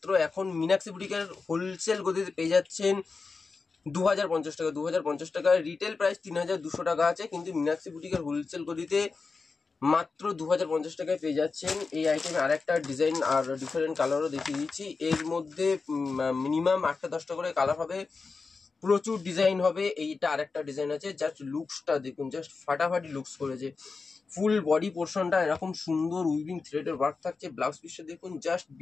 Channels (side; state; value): right; quieter; 4.4 dB